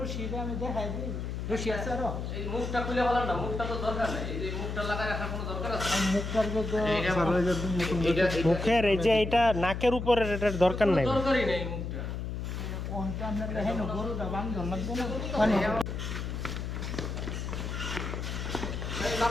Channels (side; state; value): left; noise; hum, 4 dB below the sound